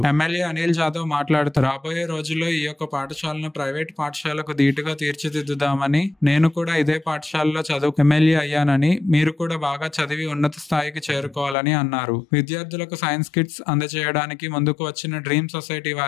ఎమ్మెల్యే అనిల్ జాదవ్ మాట్లాడుతూ రాబోయే రోజుల్లో ఈ యొక్క పాఠశాలను ప్రైవేట్ పాఠశాలకు ధీటుగా తీర్చిదిద్దుదామని, నేను కూడా ఇదే పాఠశాలలో చదువు ఎమ్మెల్యే అయ్యానని, మీరు కూడా బాగా చదివి ఉన్నత స్థాయికి చేరుకోవాలని అన్నారు. విద్యార్థులకు సైన్స్ కిట్స్ అందజేయడానికి ముందుకు వచ్చిన డ్రీమ్ సొసైటీ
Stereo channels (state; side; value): drops out; right; at 11.6 s